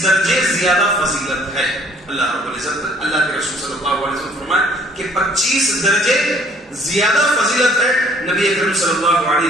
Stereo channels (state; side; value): normal; both; correlation 0.59